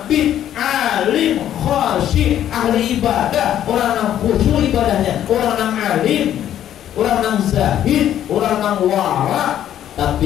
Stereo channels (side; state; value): right; quieter; 11.1 dB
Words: alim, khasyih, ahli ibadah, orang yang khusyuk ibadahnya, orang yang alim, orang yang zahid, orang yang wara.